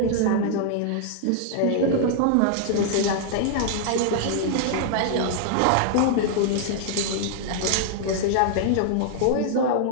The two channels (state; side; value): different; both; correlation -0.01